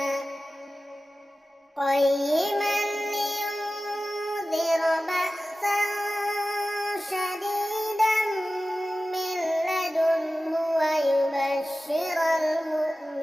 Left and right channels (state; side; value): normal; both; correlation 0.95